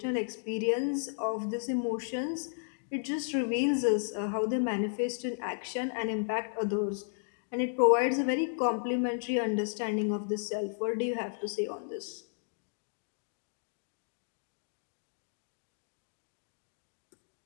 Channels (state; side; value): silent; right; digital silence